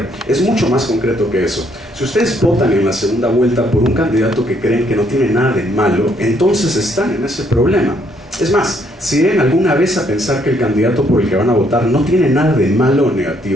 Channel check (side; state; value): both; normal; correlation 0.69